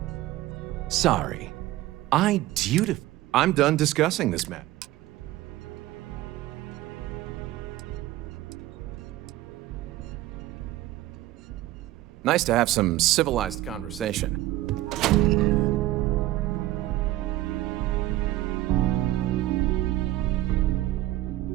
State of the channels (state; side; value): quieter; left; 15.9 dB